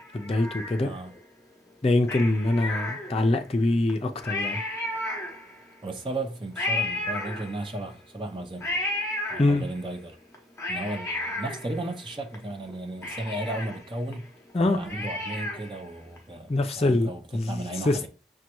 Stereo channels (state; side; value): normal; both; correlation 0.74